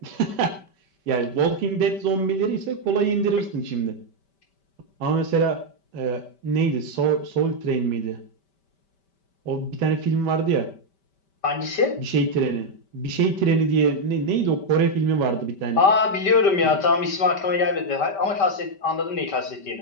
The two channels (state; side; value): late; right; 5.1 ms